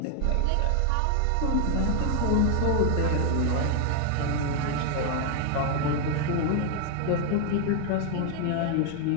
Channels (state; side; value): different; both; correlation 0.00